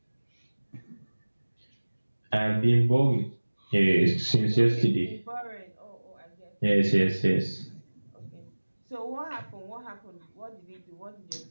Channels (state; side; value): inverted; both; correlation -1.00